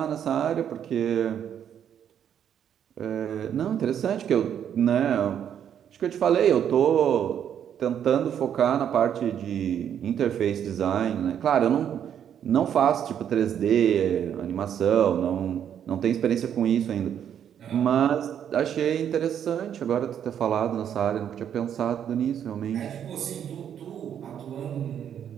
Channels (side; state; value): left; quieter; 9.1 dB